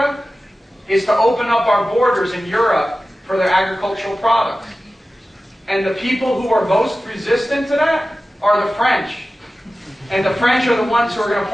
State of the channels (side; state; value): both; normal; correlation 0.95